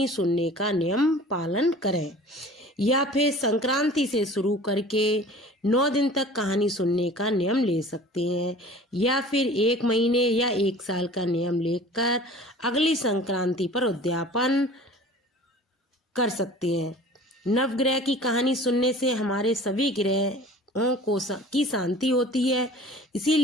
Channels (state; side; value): normal; both; correlation 0.44